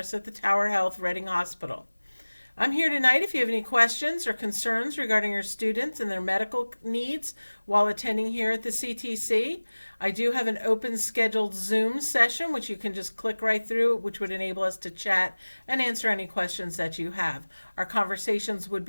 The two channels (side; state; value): both; inverted; correlation -1.00